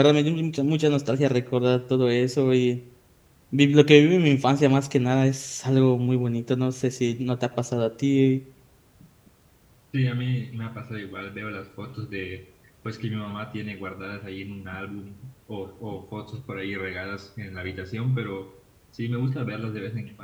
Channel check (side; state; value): both; identical; correlation 1.00